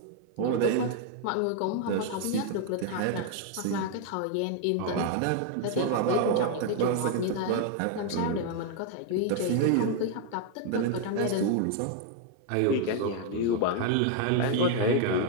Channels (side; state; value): both; different; correlation 0.00